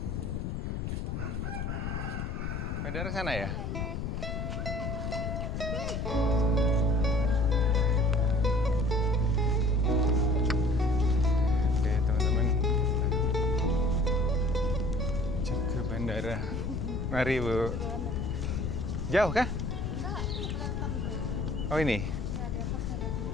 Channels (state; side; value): noise; left; rumble, 3 dB below the sound